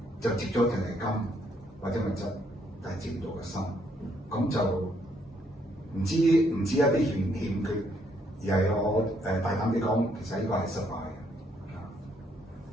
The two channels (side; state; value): both; normal; correlation 0.71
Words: 就接咗淨係金或者物質，但係接唔到個心，咁就唔知一啲欠缺，而係我大膽啲講，其實呢個係失敗。